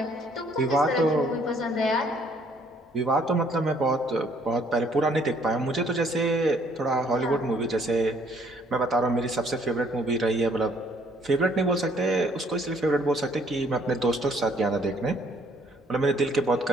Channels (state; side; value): normal; both; correlation 0.63